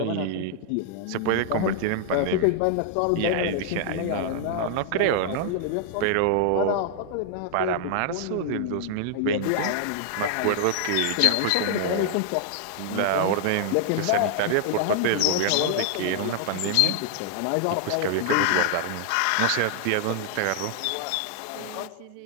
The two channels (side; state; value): both; different; correlation -0.01